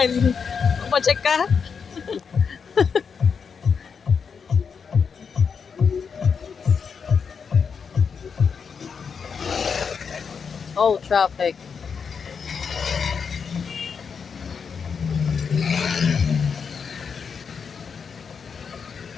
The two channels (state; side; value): quieter; right; 6.1 dB